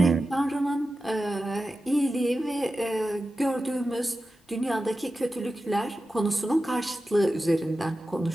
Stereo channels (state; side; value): normal; both; correlation 0.93